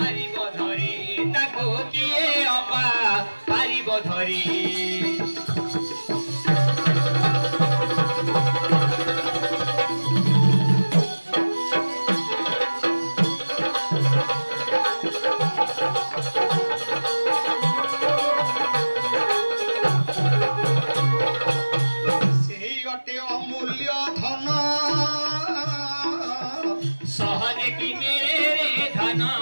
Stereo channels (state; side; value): inverted; both; correlation -1.00